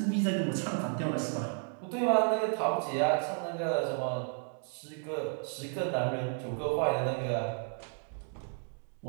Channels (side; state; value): left; silent; 56 dB below the other